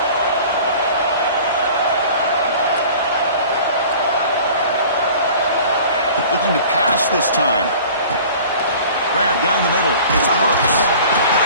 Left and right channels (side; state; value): both; inverted; correlation -0.45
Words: Looking to pass this time. Grab down the middle. It's Brooks.